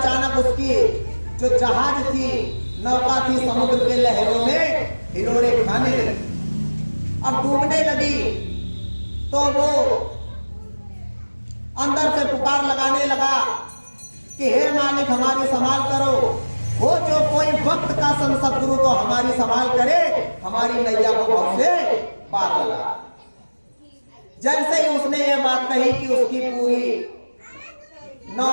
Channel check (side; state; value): both; inverted; correlation -1.00